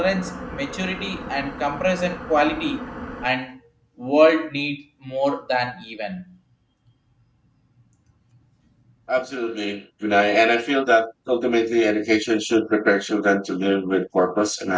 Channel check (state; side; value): identical; both; correlation 1.00